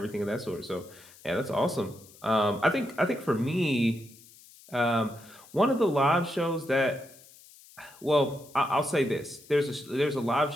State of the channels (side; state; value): left; noise; hiss, 23 dB below the sound